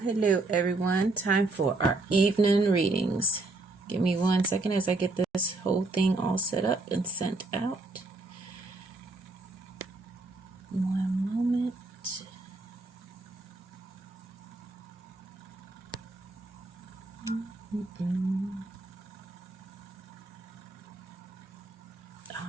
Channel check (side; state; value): left; quieter; 3.1 dB